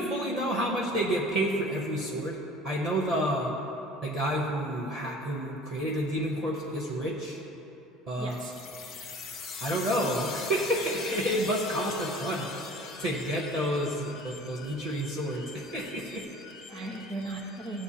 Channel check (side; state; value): both; normal; correlation 0.46